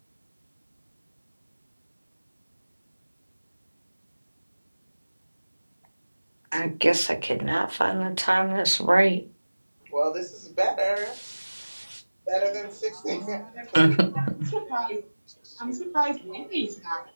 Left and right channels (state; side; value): inverted; both; correlation -1.00